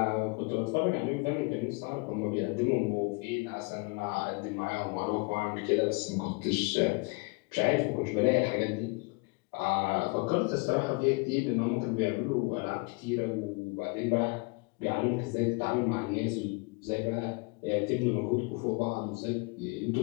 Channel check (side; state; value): right; quieter; 29.7 dB